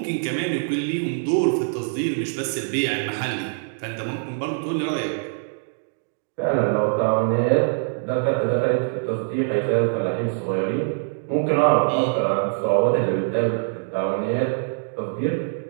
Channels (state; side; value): silent; left; digital silence